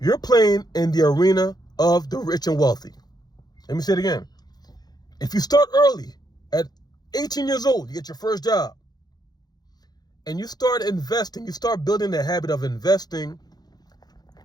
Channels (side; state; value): right; late; 0.19 ms